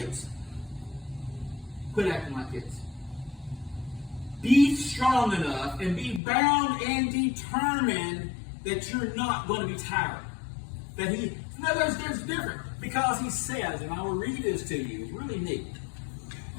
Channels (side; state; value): right; drops out; at 6.2 s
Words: Quit acting like kids. Be strong enough and be bound and determined that you're not going to be tired. There's different. Because he says, and I will read this to you, it's really neat.